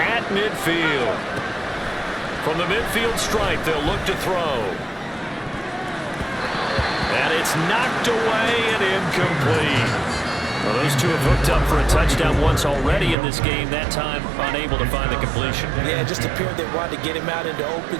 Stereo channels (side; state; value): left; drops out; at 13.2 s